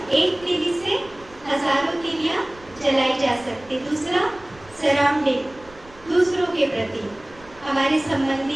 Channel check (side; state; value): right; noise; rumble, 24 dB below the sound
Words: एक तीली से हजारों तीलियाँ जलाई जा सकती। दूसरा सराउंडिंग, दूसरों के प्रति, हमारे